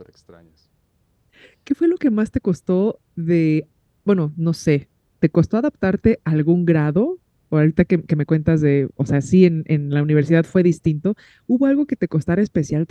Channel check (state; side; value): identical; both; correlation 1.00